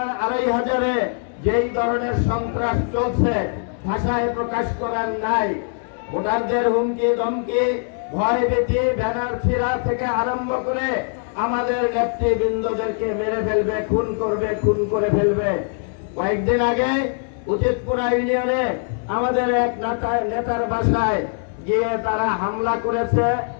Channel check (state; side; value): silent; right; 57 dB below the other